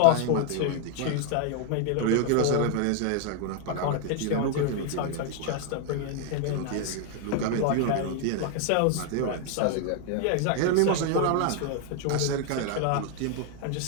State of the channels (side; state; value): both; different; correlation 0.00